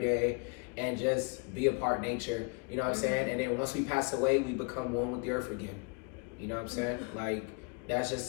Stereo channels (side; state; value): right; quieter; 34.7 dB